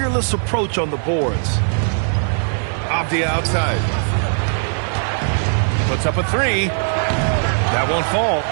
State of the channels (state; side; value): silent; left; digital silence